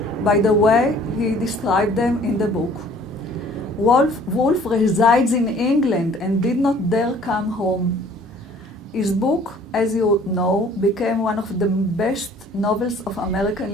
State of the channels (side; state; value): both; normal; correlation 0.54